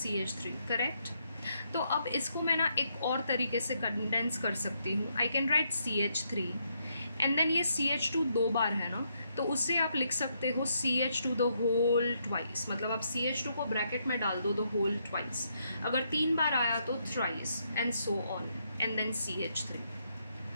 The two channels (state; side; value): inverted; both; correlation -0.76